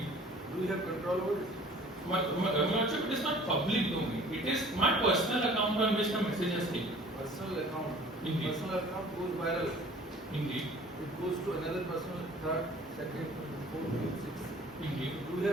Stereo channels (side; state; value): both; normal; correlation 0.49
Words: Do you have control over it? Lordship, it is not public domain. It is my personal account on which the message has taken. Personal account. Indeed. Personal account goes viral. Indeed. It goes to another personal, third, second, fourth, fifth, sixth. Indeed. Do you